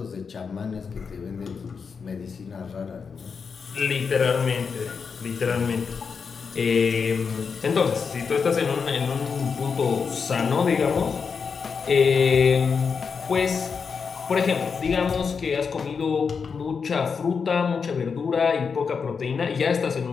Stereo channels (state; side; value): quieter; right; 5.7 dB